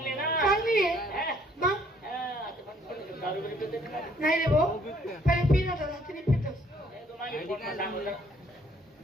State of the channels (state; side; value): normal; both; correlation 0.63